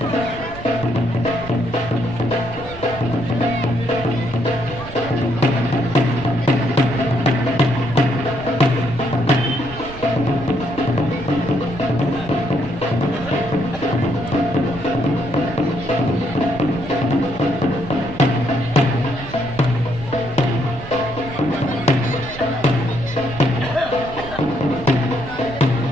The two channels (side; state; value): right; noise; rumble, 13 dB below the sound